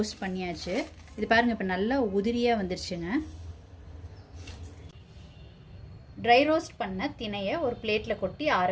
பண்ணியாச்சு. இது பாருங்கள், இப்போ நல்லா உதிரியாக வந்துருச்சுங்க. ட்ரை ரோஸ்ட் பண்ண திணையை ஒரு பிளேட்டில் கொட்டி ஆற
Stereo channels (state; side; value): identical; both; correlation 1.00